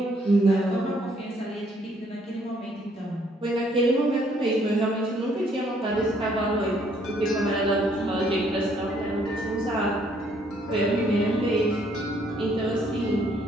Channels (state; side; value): normal; both; correlation 0.66